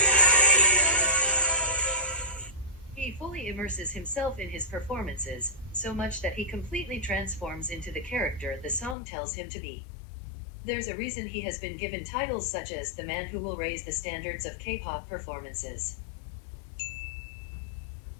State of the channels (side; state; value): right; drops out; at 9.0 s